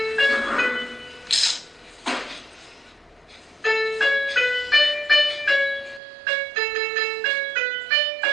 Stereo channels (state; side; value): drops out; left; at 6.0 s